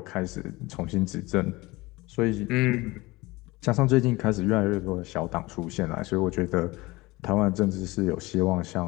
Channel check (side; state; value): right; quieter; 21.6 dB